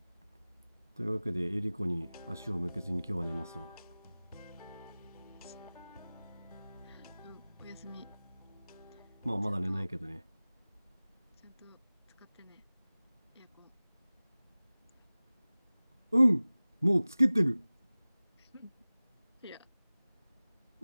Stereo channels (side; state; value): both; inverted; correlation -0.99